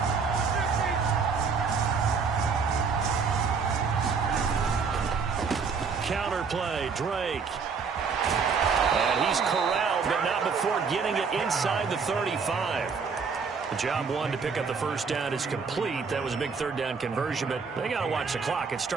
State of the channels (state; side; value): quieter; left; 5.5 dB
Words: Counter play, Drake. And he's corralled, but not before getting it inside the 35. The job one to pick up the first down is complete. That was a big third down conversion, but they got to watch the clock. It's